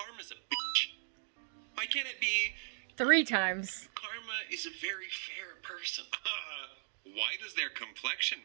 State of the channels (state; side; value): silent; left; digital silence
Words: a bitch? Why can't it be, 3 times. karma is a very fair person? Why does their complexion